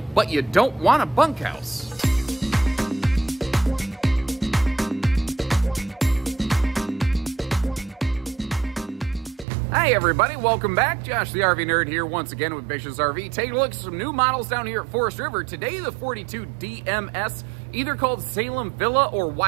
but you don't want a bunkhouse. Hi everybody, welcome back. Josh the RV Nerd here once again with Bishop's RV. Taking a look at some new models down here at Forest River. Today the 42 DMS, either called Salem Villa or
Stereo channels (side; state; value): left; drops out; at 9.5 s